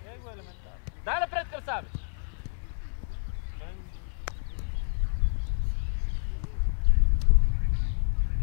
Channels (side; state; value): right; silent; 59 dB below the other